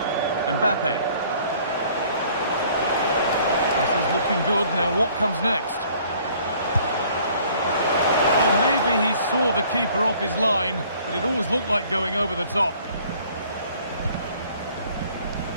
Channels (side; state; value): both; inverted; correlation -0.56